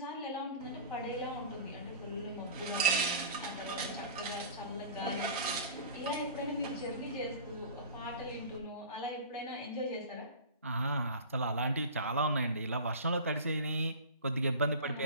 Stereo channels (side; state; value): both; inverted; correlation -0.37